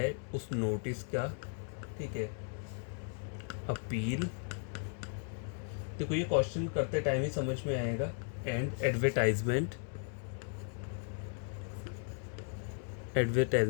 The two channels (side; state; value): right; silent; 54 dB below the other